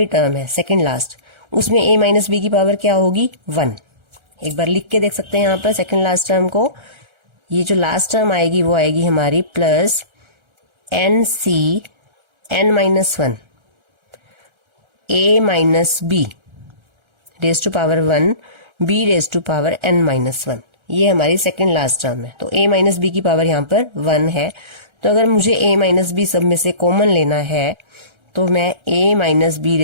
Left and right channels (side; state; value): left; late; 1.3 ms